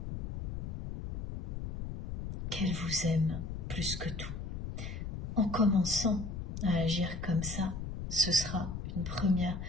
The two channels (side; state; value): left; noise; rumble, 5 dB below the sound